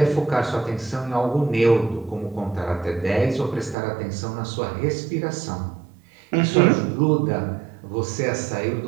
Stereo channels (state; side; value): drops out; left; at 3.8 s